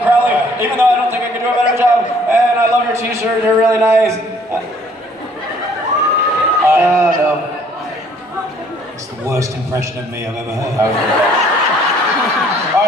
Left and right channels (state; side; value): normal; both; correlation 0.60